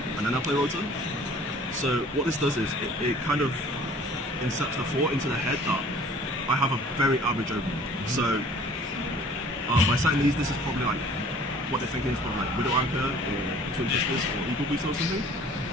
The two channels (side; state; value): both; normal; correlation 0.51